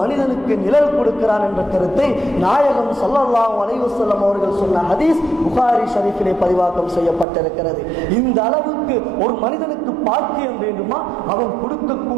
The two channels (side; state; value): left; drops out; at 7.2 s